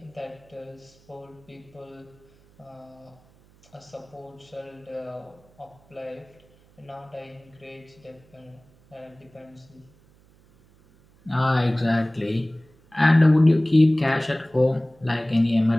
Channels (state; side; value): noise; right; hum, 29 dB below the sound